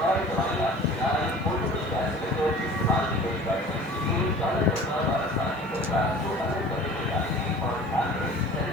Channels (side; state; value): left; noise; hiss, 30 dB below the sound